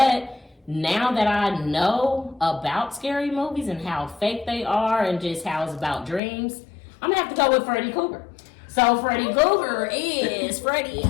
now that I know about scary movies and how fake they are and just how it's about dreams, I'm gonna have to go with Freddy Krueger. So Freddy Krueger is Freddy.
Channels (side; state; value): right; drops out; at 6.2 s